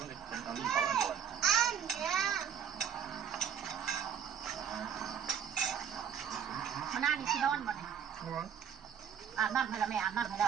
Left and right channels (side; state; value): left; quieter; 8.2 dB